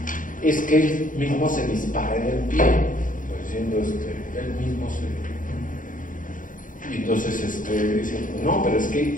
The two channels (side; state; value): right; late; 0.38 ms